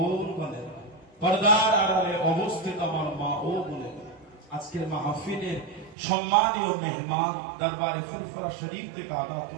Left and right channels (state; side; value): drops out; left; at 6.0 s